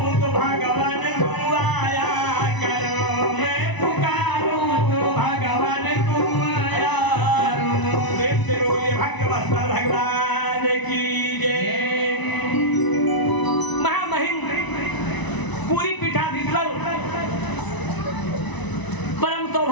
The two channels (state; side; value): late; right; 1.0 ms